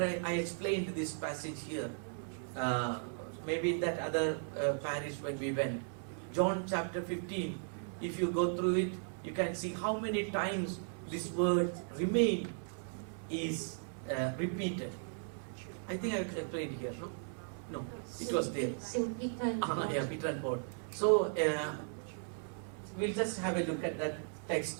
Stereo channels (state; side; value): silent; left; digital silence